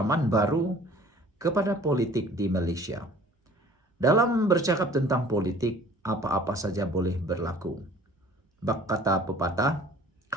baru kepada politik di Malaysia? Dalam bercakap tentang politik, apa-apa saja boleh berlaku. Bak kata pepatah,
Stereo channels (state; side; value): normal; both; correlation 0.50